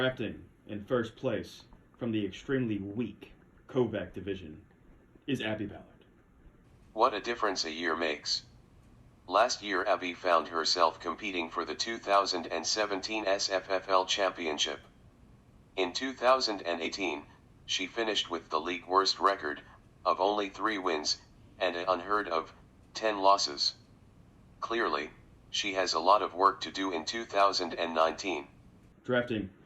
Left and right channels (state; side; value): identical; both; correlation 1.00